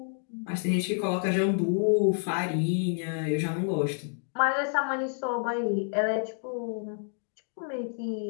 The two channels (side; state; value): right; silent; 59 dB below the other